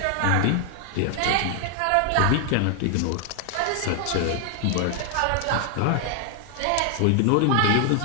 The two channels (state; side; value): different; both; correlation 0.00